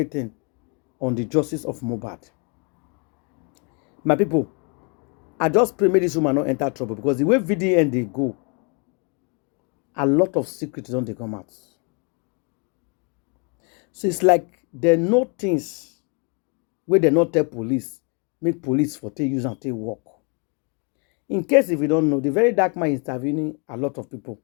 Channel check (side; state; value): right; quieter; 35.0 dB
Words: on the justice of Mohbad. My people, I just pray make this woman not enter trouble, because the way VDM they go, a lot of secrets don't they come out. So it's like they know things where they not tell police, make police for take use and take work. In case if you don't know, the very dark man is intervening a lot of people,